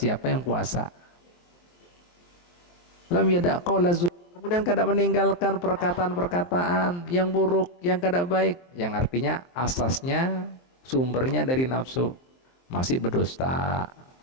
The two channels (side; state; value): right; late; 23 ms